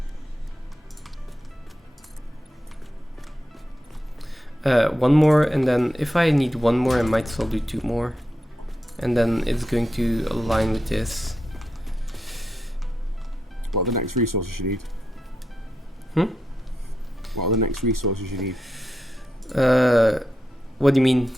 One more, and then if I need one more, I might as well do two more. And then it's going to align with this. What are the next resources you need? What are the next resources you need? What do you mean?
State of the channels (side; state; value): both; normal; correlation 0.86